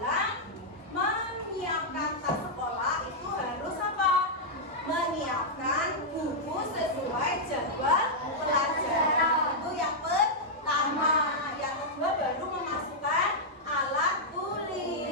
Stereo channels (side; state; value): both; normal; correlation -0.06